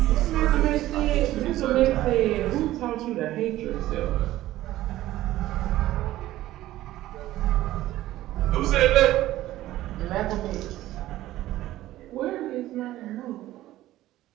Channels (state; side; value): quieter; left; 15.0 dB